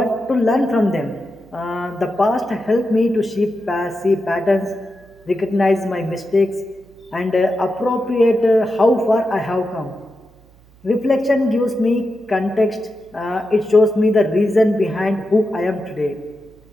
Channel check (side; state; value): right; noise; hum, 28 dB below the sound